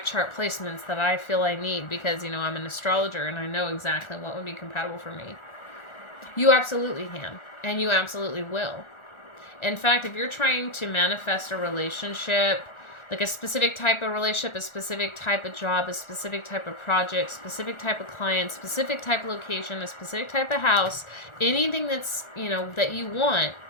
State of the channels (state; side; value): late; right; 1.4 ms